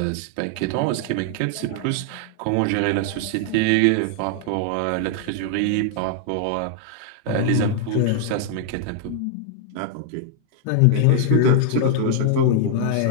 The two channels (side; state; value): both; different; correlation -0.01